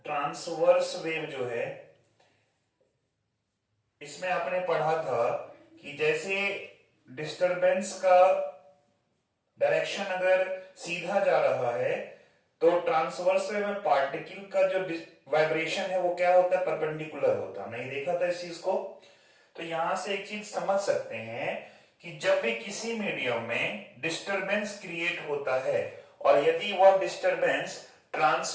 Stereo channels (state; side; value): identical; both; correlation 1.00